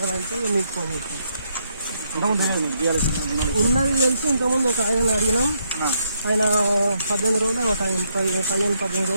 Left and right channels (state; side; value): inverted; both; correlation -0.76